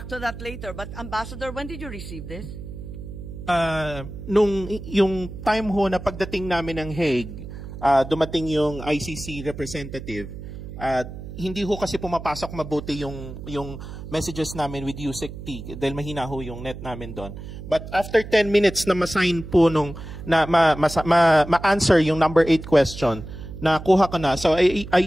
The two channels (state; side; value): noise; right; hum, 11 dB below the sound